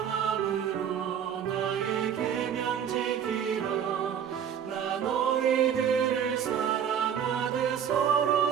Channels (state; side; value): quieter; left; 8.5 dB